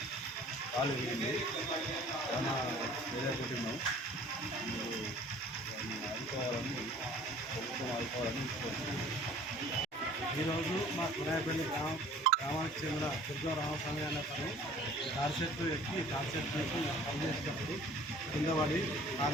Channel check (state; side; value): normal; both; correlation 0.50